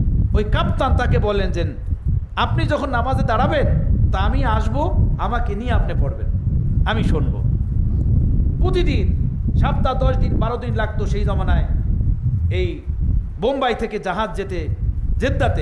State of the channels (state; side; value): identical; both; correlation 1.00